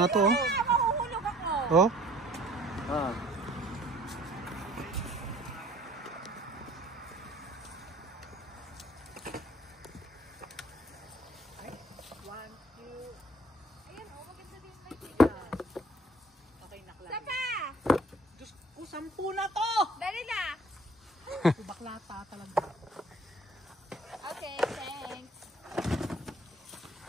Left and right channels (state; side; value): normal; both; correlation 0.55